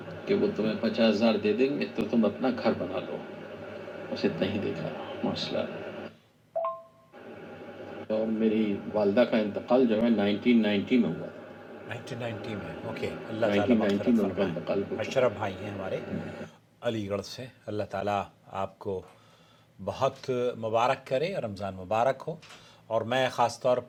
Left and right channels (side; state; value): both; identical; correlation 1.00